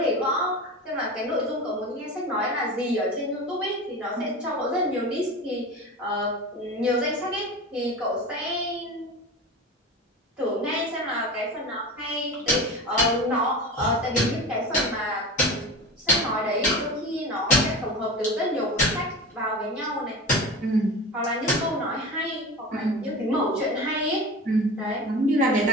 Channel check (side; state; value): both; normal; correlation 0.30